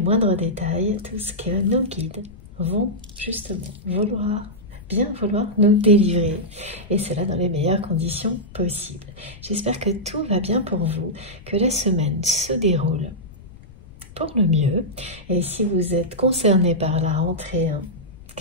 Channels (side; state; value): left; noise; rumble, 20 dB below the sound